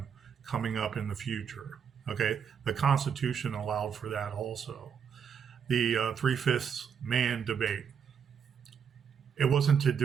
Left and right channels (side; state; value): left; quieter; 7.2 dB